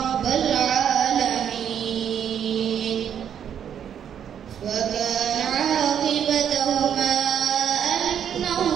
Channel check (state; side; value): quieter; left; 8.8 dB